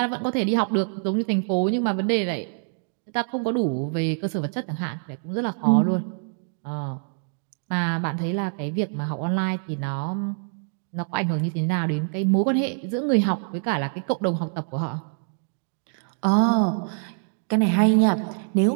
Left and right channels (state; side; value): silent; left; 62 dB below the other